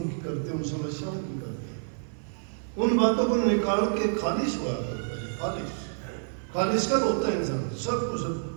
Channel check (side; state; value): left; silent; 58 dB below the other